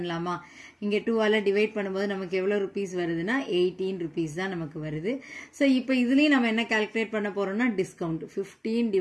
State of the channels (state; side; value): identical; both; correlation 1.00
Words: இங்கே 2ஆல் டிவைட் பண்ணும்போது நமக்கு எவ்வளோ ருபீஸ் வருதுன்னா 18 rupees தான் நமக்கு வருது. ஸோ இப்போ இதுலேயும் நம்ம என்ன கால்குலேட் பண்ண போகிறோம்னா discount 15